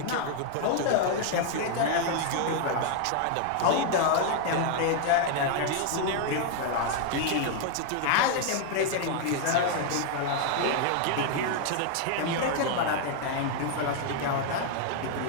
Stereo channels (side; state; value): both; different; correlation 0.00